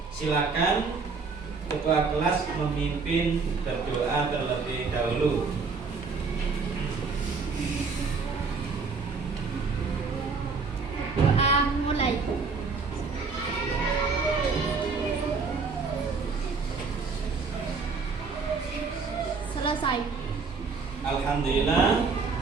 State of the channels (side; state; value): left; quieter; 4.7 dB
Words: silakan ketua kelas memimpin berdoa terlebih dahulu. Doa mulai. Selesai. Alhamdulillah,